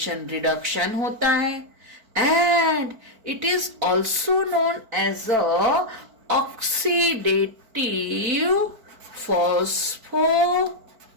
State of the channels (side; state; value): left; late; 4.5 ms